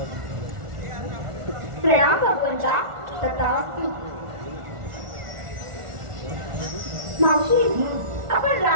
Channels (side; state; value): left; late; 1.4 ms